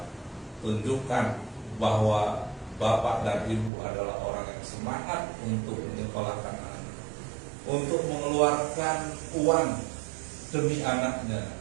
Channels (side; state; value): left; drops out; at 3.7 s